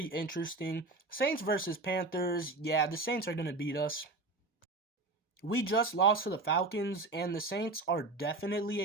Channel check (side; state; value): left; quieter; 3.2 dB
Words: interesting. Saints versus Panthers. Yeah, the Saints are going to beat us. We just lost to the Falcons, and the Saints are definitely